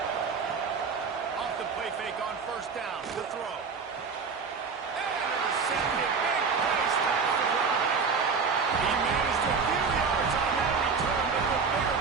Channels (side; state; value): left; quieter; 5.3 dB